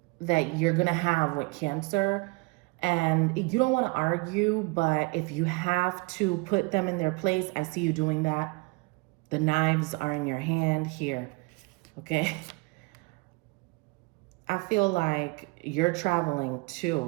that you're going to have with Cancer. And you don't want to argue, but if you have to put them in their place, I see you doing that. The knives are in your hand here, okay? I feel like you're traveling too.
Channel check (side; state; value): left; quieter; 27.5 dB